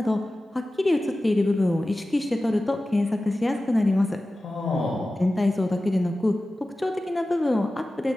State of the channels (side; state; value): both; normal; correlation 0.95